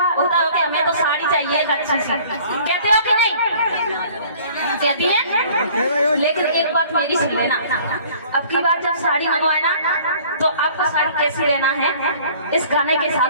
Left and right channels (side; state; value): both; inverted; correlation -0.52